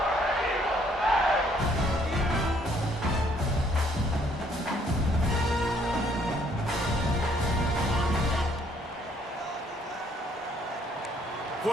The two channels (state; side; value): normal; both; correlation 0.65